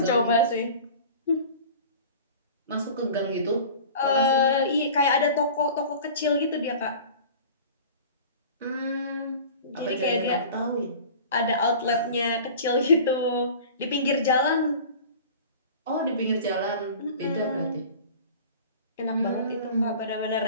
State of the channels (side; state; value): both; inverted; correlation -0.39